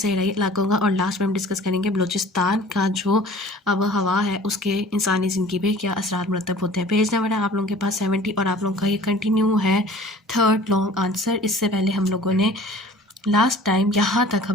इलाकों का, और लास्ट में हम डिस्कस करेंगे बलूचिस्तान का जो अब हवा है उसके इंसानी ज़िंदगी पे क्या असरात मुरतब होते हैं। पेज नंबर है आप लोगों के पास 70 और आप लोगों का ये कंटिन्यू है थर्ड लॉन्ग आंसर। इससे पहले हम लोगों ने लास्ट टाइम यहाँ तक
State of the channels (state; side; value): normal; both; correlation 0.47